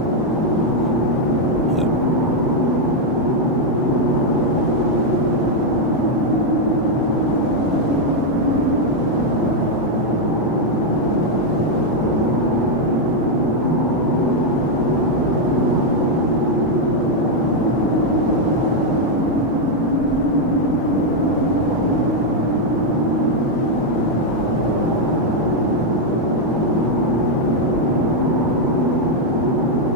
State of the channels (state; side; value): normal; both; correlation 0.01